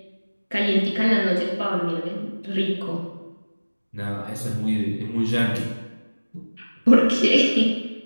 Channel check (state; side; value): inverted; both; correlation -1.00